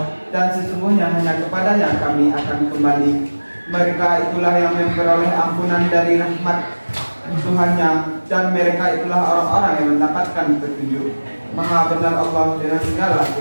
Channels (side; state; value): both; inverted; correlation -1.00